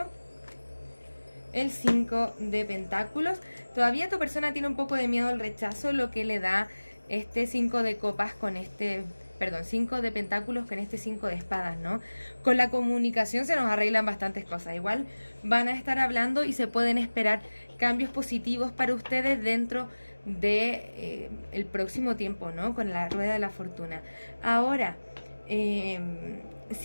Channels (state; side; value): inverted; both; correlation -1.00